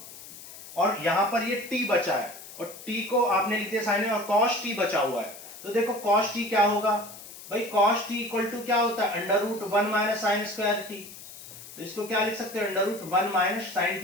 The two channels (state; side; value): noise; left; hiss, 15 dB below the sound